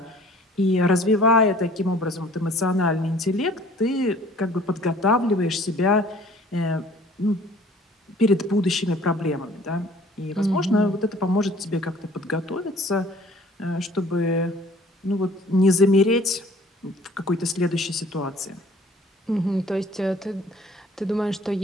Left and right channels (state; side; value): normal; both; correlation 0.53